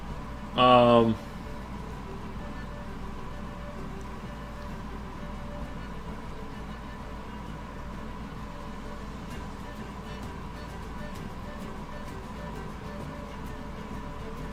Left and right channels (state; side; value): identical; both; correlation 1.00